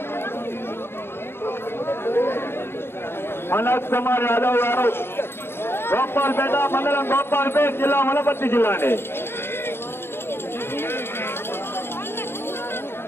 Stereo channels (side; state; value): right; late; 0.11 ms